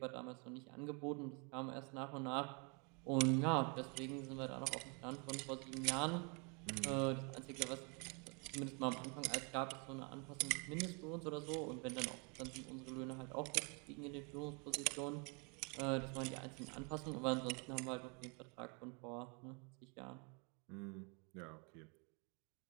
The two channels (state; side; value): quieter; left; 34.0 dB